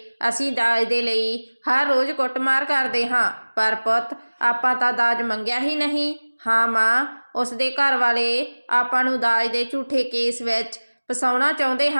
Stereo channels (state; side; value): inverted; both; correlation -1.00